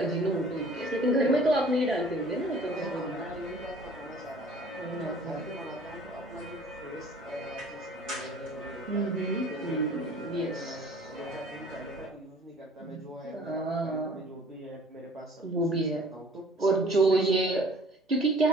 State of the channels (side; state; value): both; normal; correlation 0.51